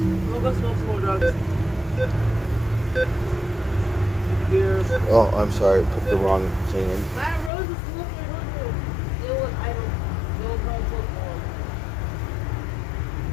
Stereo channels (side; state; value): right; drops out; at 7.5 s